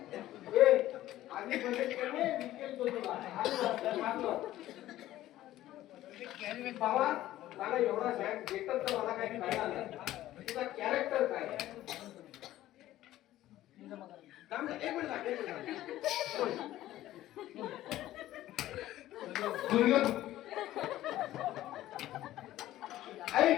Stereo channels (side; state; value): right; quieter; 14.5 dB